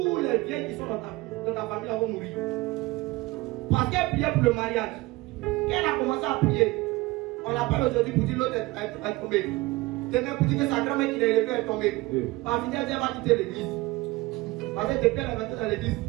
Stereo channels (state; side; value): quieter; left; 21.1 dB